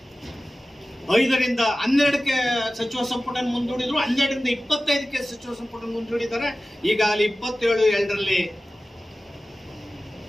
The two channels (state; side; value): normal; both; correlation 0.96